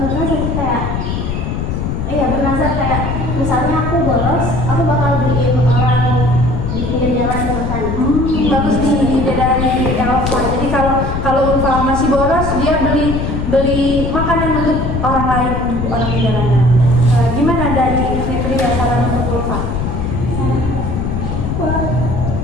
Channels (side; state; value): left; noise; rumble, 2 dB below the sound